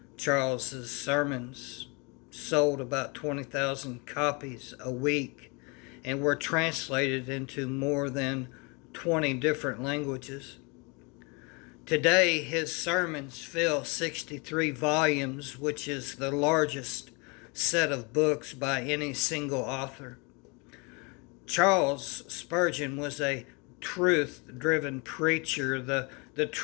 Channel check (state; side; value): quieter; right; 30.2 dB